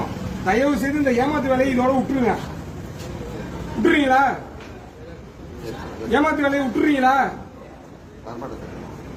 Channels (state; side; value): identical; both; correlation 1.00